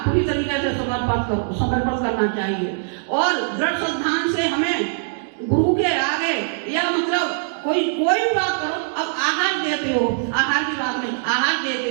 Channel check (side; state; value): left; silent; digital silence